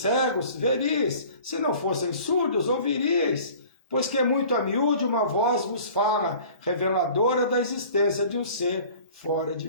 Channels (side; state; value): both; inverted; correlation -0.47